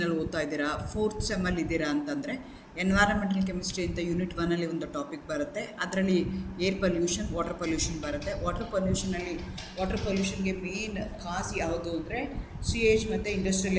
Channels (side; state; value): both; identical; correlation 1.00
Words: ಓದ್ತಾ ಇದ್ದೀರಾ, 4th ಸೆಮ್ಮಲ್ಲಿ ಇದ್ದೀರಾ ಅಂತಂದರೆ ಎನ್ವೈರನ್ಮೆಂಟಲ್ ಕೆಮಿಸ್ಟ್ರಿ ಅಂತ ಯೂನಿಟ್ 1ಅಲ್ಲಿ ಒಂದು ಟಾಪಿಕ್ ಬರುತ್ತೆ. ಅದರಲ್ಲಿ ಏರ್ ಪೊಲ್ಯೂಷನ್, ವಾಟರ್ ಪೊಲ್ಯೂಷನ್ ಬರುತ್ತೆ. ವಾಟರ್ ಪೊಲ್ಯೂಷನ್ಗೆ ಮೇನ್ ಕಾಸ್ ಯಾವುದು ಅಂದರೆ ಸಿಯೇಜ್ ಮತ್ತು ಇಂಡಸ್ಟ್ರಿಯಲ್